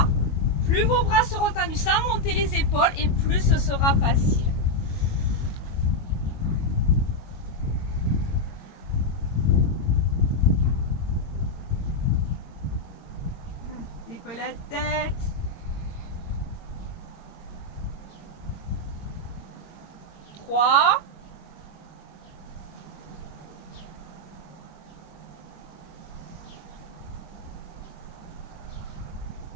Plus vos bras seront tendus sans monter les épaules et plus ce sera facile. Décollez la tête. 3.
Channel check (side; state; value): right; late; 22 ms